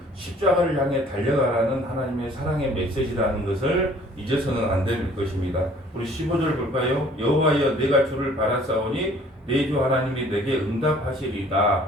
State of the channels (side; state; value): both; normal; correlation 0.55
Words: 십자가를 향해 달려가라는 하나님의 사랑의 메시지라는 것을 잊어서는 안 될 것입니다. 우리 15절 볼까요? 여호와여 내가 주를 바라사오니 내 주 하나님이 내게